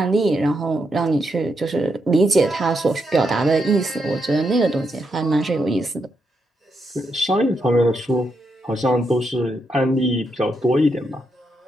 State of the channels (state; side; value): normal; both; correlation 0.82